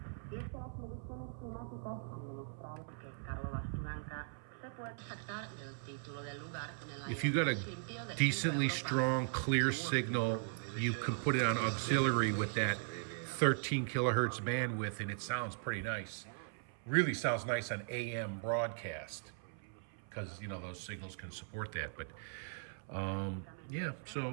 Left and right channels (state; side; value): silent; left; 52 dB below the other